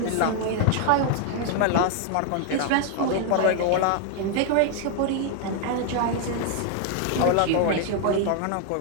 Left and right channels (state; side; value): different; both; correlation 0.00